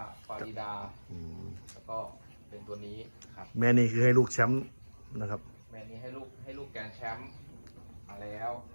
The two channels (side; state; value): both; inverted; correlation -1.00